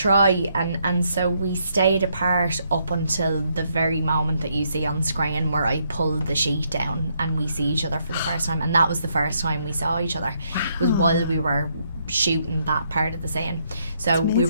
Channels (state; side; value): inverted; both; correlation -0.74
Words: and so we stayed apart up until the very moment that you see on screen where I pulled the sheet down and we see each other for the first time, and that was the first time we saw each other. It was while we were shooting that part of the scene. So we